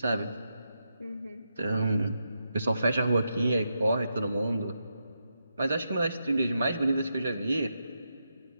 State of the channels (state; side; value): inverted; both; correlation -0.85